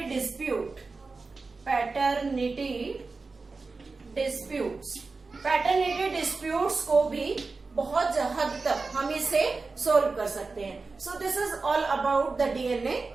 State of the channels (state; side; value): quieter; left; 4.0 dB